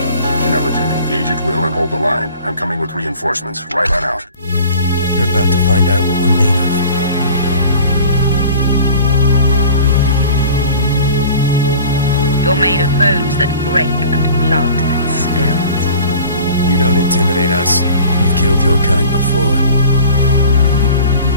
Intelligent, engage at will and hold the line. I'm coming with reinforcements. Right on out. You're about to find out what we're made of. You're made of bones that break and blood that spills. You don't intimidate us. You've killed your kind before.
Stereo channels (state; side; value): inverted; both; correlation -0.45